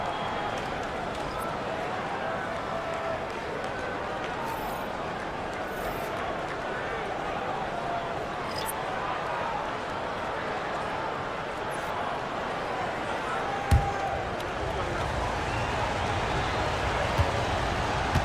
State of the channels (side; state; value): both; identical; correlation 1.00